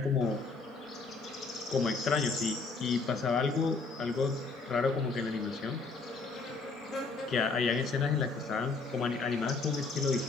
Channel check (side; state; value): right; quieter; 4.1 dB